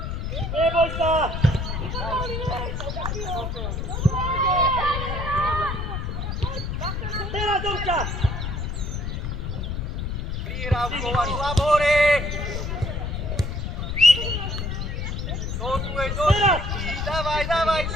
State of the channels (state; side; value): noise; left; rumble, 3 dB below the sound